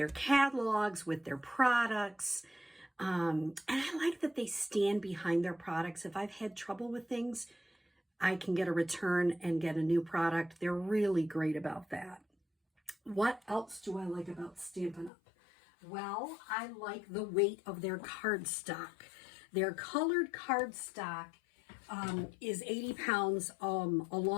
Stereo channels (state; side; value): drops out; right; at 15.1 s